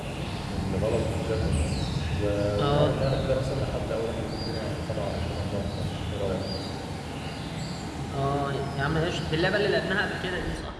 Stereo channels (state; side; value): identical; both; correlation 1.00